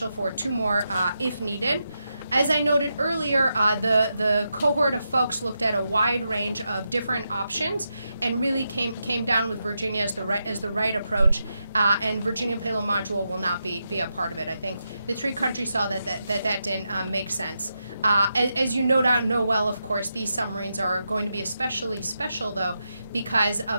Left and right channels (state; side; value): inverted; both; correlation -0.86